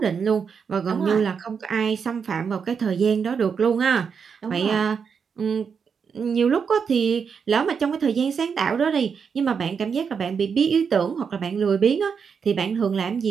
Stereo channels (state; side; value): quieter; left; 6.3 dB